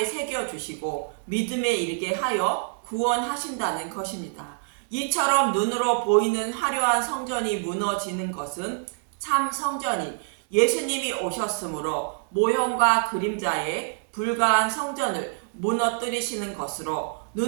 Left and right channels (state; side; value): silent; left; digital silence